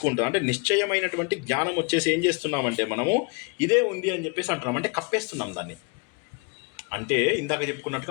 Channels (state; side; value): quieter; right; 31.6 dB